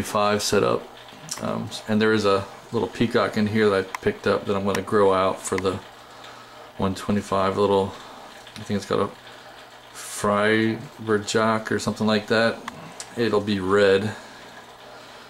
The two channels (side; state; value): both; identical; correlation 1.00